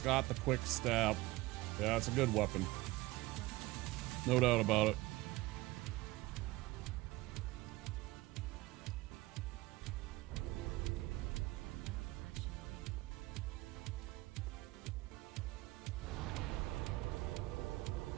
got the quick step. Yeah, it's a good weapon. No doubt about it.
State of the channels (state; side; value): quieter; left; 19.8 dB